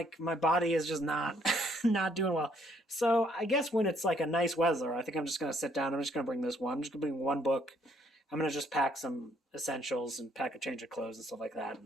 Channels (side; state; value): both; normal; correlation 0.67